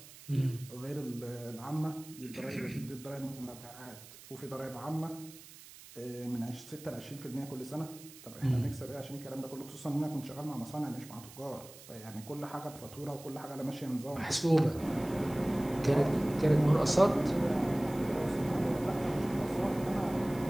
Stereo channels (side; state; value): right; noise; hiss, 18 dB below the sound